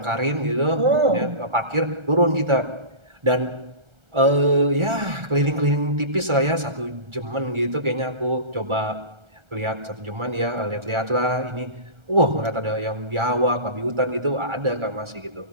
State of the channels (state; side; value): late; left; 1.4 ms